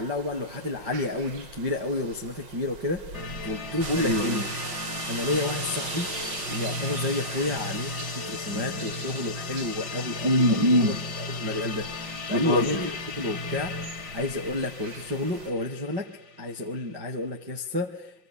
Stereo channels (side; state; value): left; late; 5.7 ms